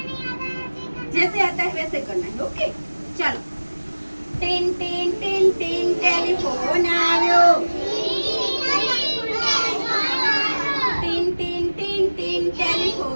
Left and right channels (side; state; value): both; inverted; correlation -1.00